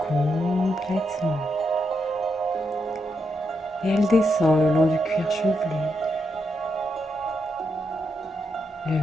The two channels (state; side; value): normal; both; correlation 0.82